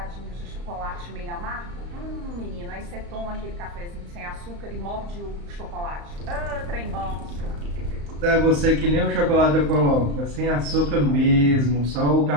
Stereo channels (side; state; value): left; late; 35 ms